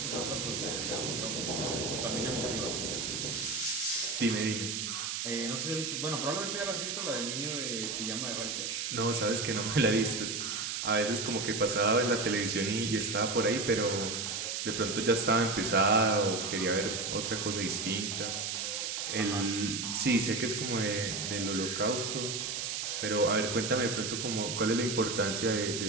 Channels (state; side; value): noise; right; hiss, 2 dB below the sound